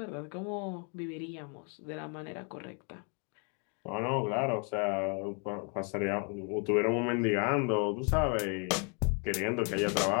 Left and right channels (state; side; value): quieter; right; 35.8 dB